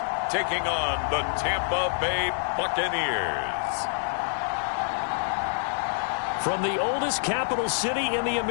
taking on the Tampa Bay Buccaneers. From the oldest capital city in the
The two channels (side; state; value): right; silent; digital silence